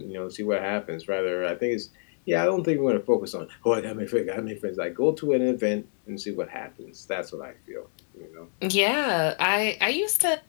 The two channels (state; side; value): silent; right; 60 dB below the other